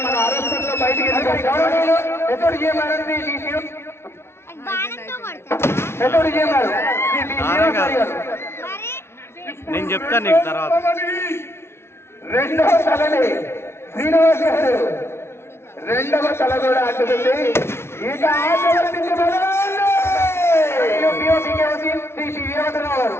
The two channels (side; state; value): right; late; 0.12 ms